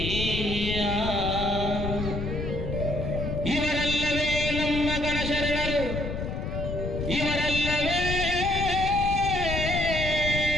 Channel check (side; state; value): left; noise; rumble, 4 dB below the sound